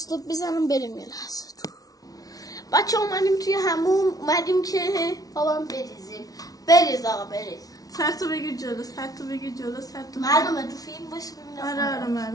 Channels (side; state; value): right; late; 0.18 ms